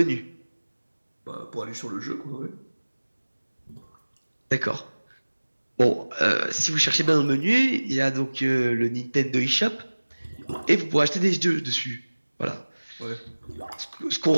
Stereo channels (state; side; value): inverted; both; correlation -1.00